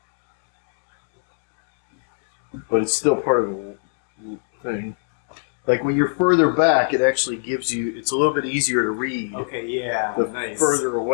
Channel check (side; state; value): right; silent; digital silence